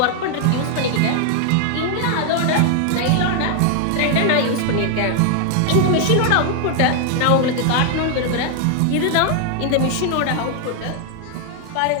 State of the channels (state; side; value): different; both; correlation 0.00